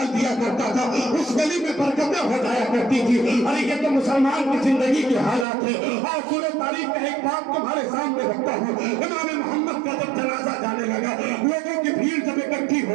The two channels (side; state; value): left; drops out; at 5.5 s